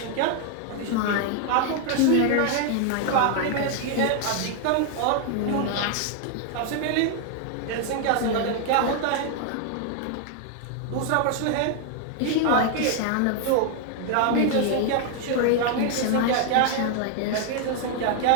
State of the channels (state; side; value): different; both; correlation 0.00